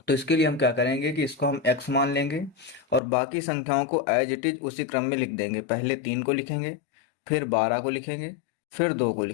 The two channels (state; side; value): drops out; right; at 3.0 s